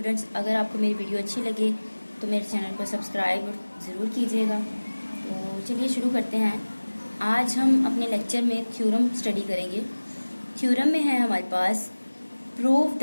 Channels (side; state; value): both; inverted; correlation -1.00